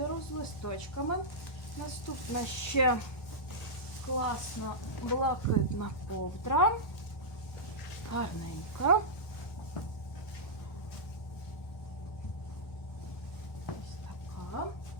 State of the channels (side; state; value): right; late; 1.3 ms